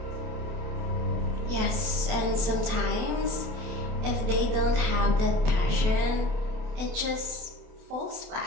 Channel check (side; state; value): left; late; 27 ms